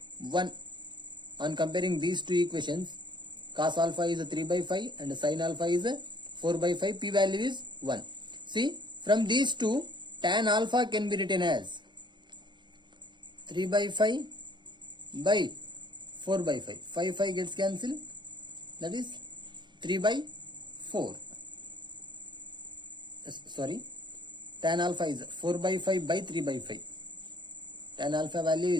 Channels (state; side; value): late; left; 0.22 ms